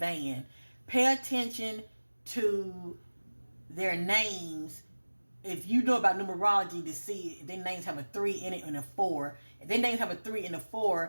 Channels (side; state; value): both; inverted; correlation -1.00